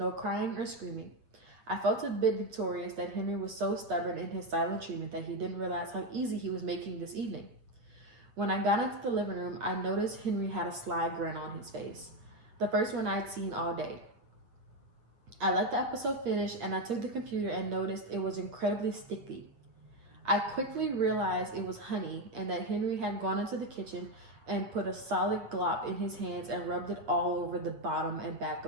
crying or screaming. I felt a bit victorious that Henry was so stubborn in his silent treatment that he didn't realize how easy he was making this evening. When I got into the living room, I noticed Henry had a sly grin on his face, the first one I'd seen all day. I let the episode finish and I took the computer and noticed it was incredibly sticky. I quickly realized it was honey and that Henry had gone into the kitchen and put a solid glop in his hands and rubbed it all over the bottom and back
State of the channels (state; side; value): late; left; 8.7 ms